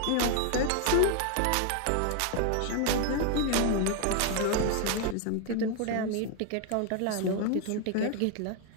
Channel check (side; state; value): both; different; correlation 0.01